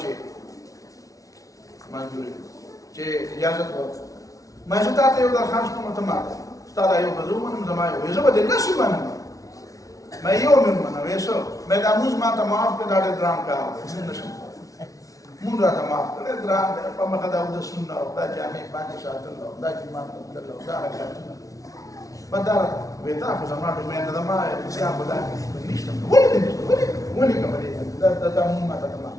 منظوري چې اجازه ورکړه ما زه تاسو یو درخواست کوم ته ما ستاسو یو غزو منم زما یو زه به د نشي منم ما یو منم وېسو مې د اموز ما ته معاف کړه دا درام کار نشم مونږ راته معاف کړه درام په مخه دا د سنت او دا جامع باندې ساتل او دا چې ما ته دا حرکتونه بدل وېتا خو زما د مې د ما چې هغه دا نشته ولې کومه دا مونږ ما ته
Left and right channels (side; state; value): right; late; 0.17 ms